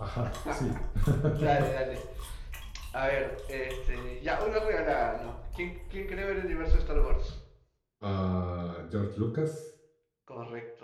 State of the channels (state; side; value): identical; both; correlation 1.00